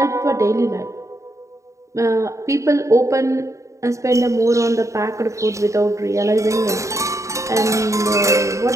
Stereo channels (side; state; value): left; late; 0.15 ms